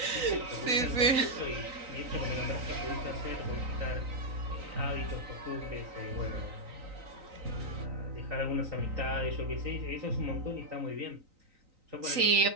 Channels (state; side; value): late; left; 3.9 ms